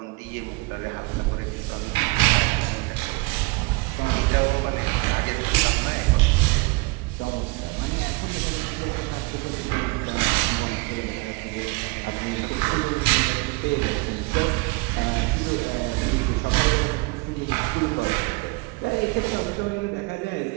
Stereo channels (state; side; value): quieter; left; 26.8 dB